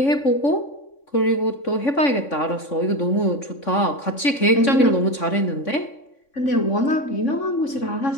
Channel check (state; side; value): late; right; 3.6 ms